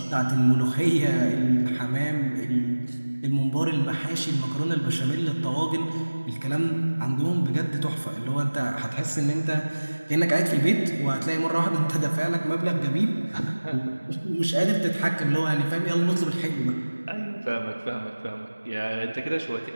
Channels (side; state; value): both; inverted; correlation -1.00